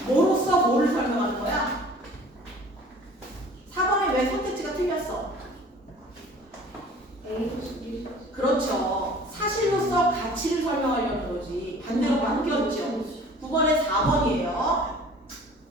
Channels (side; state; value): both; normal; correlation 0.47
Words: 뭐로써 뭐를 설명하는 거야? 4번에 왜 선택지가 틀렸어? 그렇죠. 사실로서 가치를 설명하려는 거지. 반대로 바뀌었죠. 9번에 4번이에요.